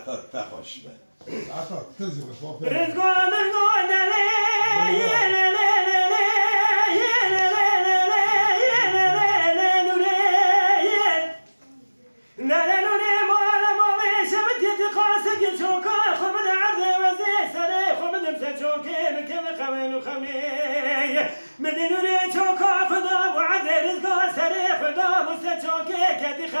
تخوش به عطا تنزل شوف رزقون مدينوري شوكا خدا وعد رزقا سري خدا مستشوكي كدي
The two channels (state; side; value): inverted; both; correlation -1.00